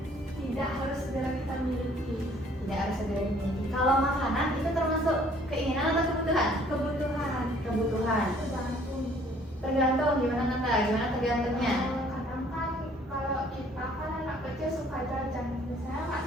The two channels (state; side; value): normal; both; correlation 0.58